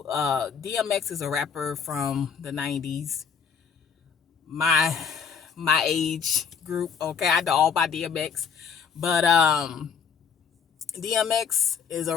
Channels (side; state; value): right; quieter; 6.6 dB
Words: DMX is a rapper from the 90s, my age group. Okay, I know all about DMX, but DMX is a